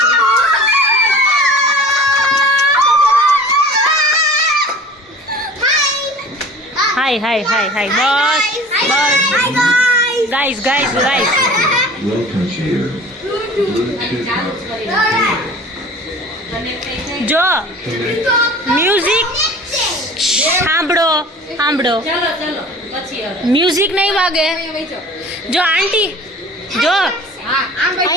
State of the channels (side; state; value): both; normal; correlation 0.43